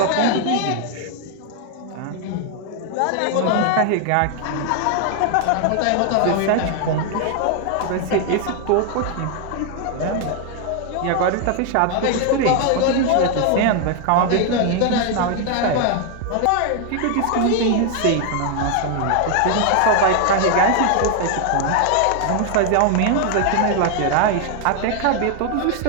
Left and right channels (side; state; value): both; different; correlation 0.00